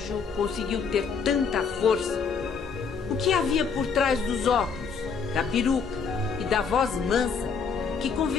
conseguiu ter tanta força? O que havia por trás dos óculos, da peruca e da voz mansa que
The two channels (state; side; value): quieter; right; 5.7 dB